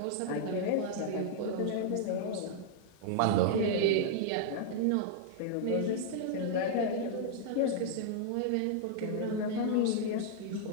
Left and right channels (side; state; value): both; different; correlation -0.01